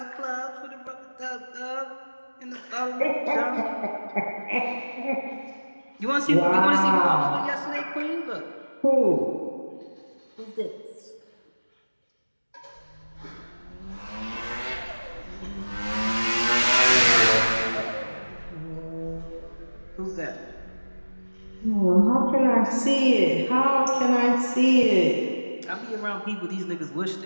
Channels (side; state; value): both; inverted; correlation -1.00